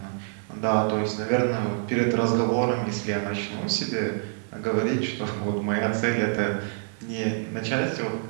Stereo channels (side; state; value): left; silent; digital silence